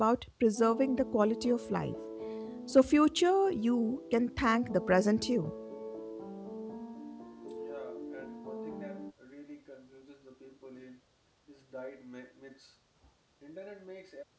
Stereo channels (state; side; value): identical; both; correlation 1.00